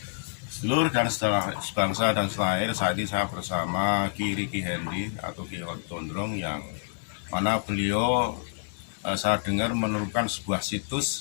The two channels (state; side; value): silent; right; digital silence